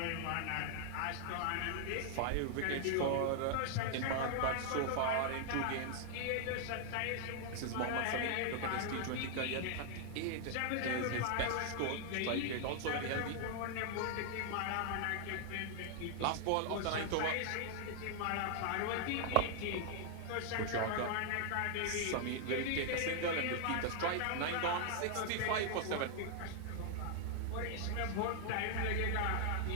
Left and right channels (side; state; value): both; different; correlation 0.00